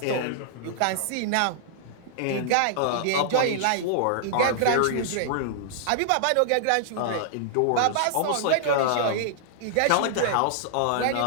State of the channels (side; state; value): both; different; correlation -0.01